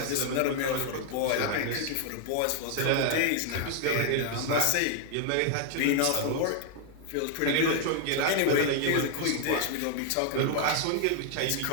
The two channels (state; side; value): different; both; correlation 0.00